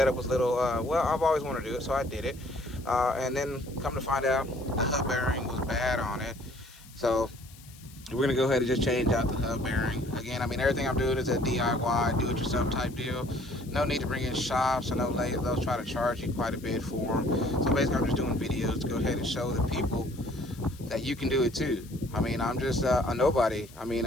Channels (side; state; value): left; noise; hiss, 22 dB below the sound